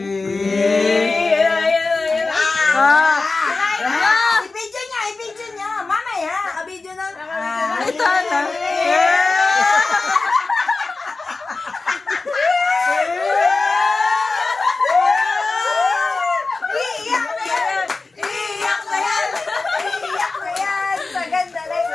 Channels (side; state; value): right; quieter; 3.7 dB